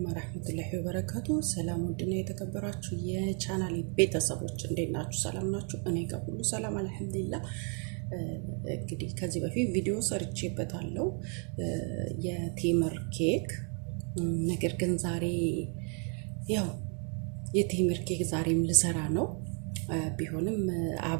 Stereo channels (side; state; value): left; quieter; 38.9 dB